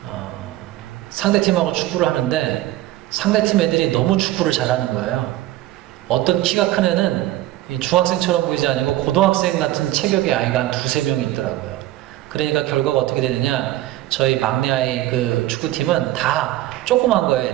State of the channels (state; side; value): quieter; left; 15.3 dB